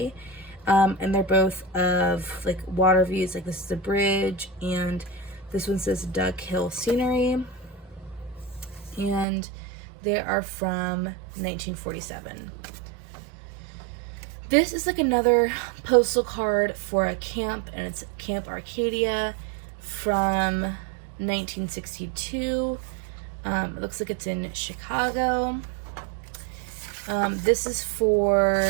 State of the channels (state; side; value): drops out; left; at 9.2 s